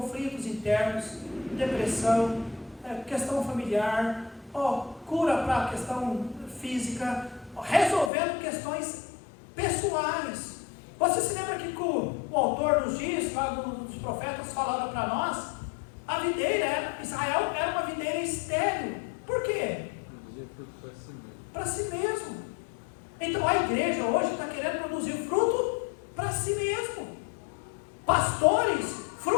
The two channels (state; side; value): drops out; right; at 8.1 s